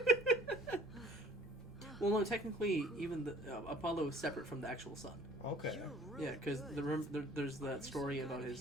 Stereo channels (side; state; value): both; normal; correlation 0.54